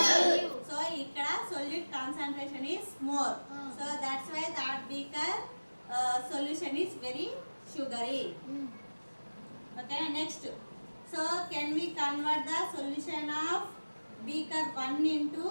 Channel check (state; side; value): inverted; both; correlation -1.00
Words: సో ఇక్కడ solute concentration is more. So that's why that beaker solution is very sugary. Okay, next, so can we convert the solution of beaker 1 into